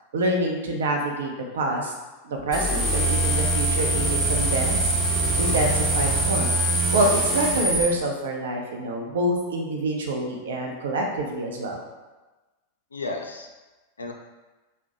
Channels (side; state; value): both; normal; correlation 0.07